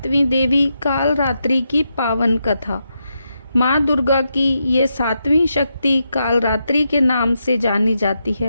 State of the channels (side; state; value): both; inverted; correlation -0.84